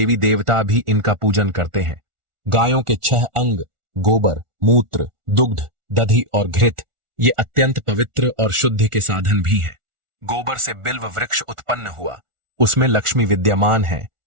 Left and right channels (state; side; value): late; left; 1.4 ms